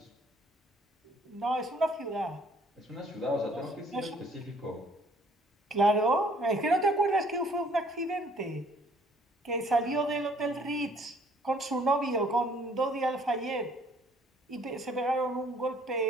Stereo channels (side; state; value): both; normal; correlation 0.60